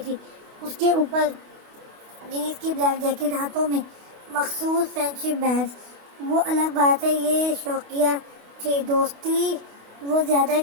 تھی، اس کے اوپر جینس کی بلیک جیکٹ، ہاتھوں میں مخصوص فرینڈشپ بینڈز۔ وہ الگ بات ہے، یہ شوقیہ تھی، دوستی وہ زیادہ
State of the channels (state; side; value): late; left; 28 ms